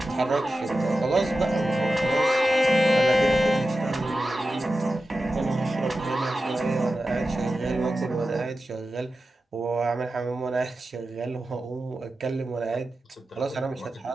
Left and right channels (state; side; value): normal; both; correlation 0.93